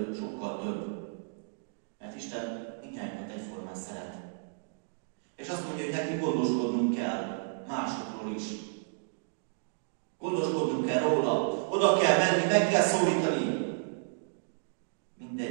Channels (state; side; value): silent; left; digital silence